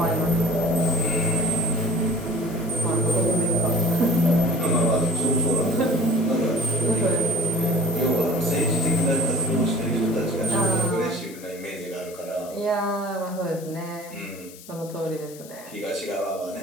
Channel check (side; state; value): left; noise; hiss, 19 dB below the sound